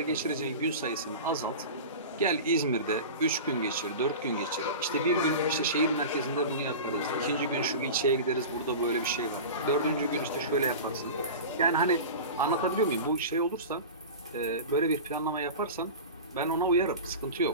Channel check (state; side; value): inverted; both; correlation -0.31